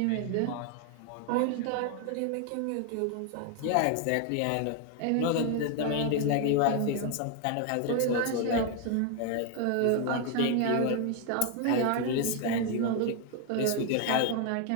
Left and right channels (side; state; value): both; different; correlation 0.01